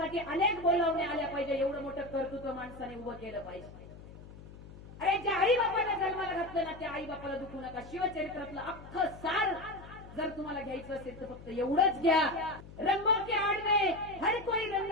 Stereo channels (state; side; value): noise; left; hum, 17 dB below the sound